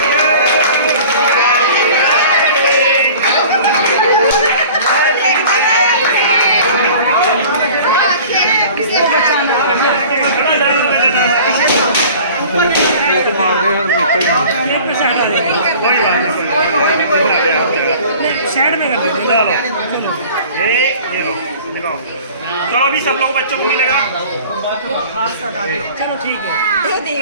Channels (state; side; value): inverted; both; correlation -0.45